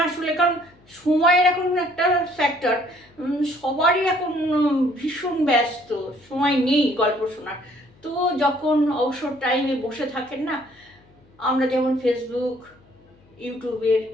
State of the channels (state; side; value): noise; left; hum, 29 dB below the sound